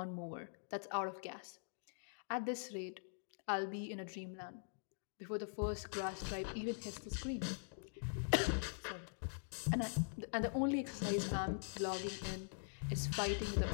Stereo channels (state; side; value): silent; right; digital silence